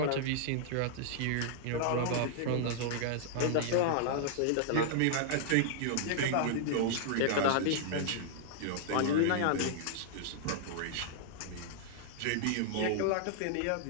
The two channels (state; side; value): different; both; correlation -0.01